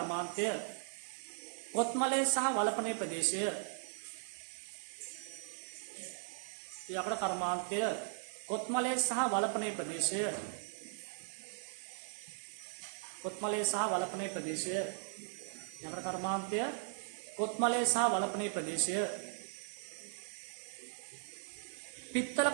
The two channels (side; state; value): left; silent; digital silence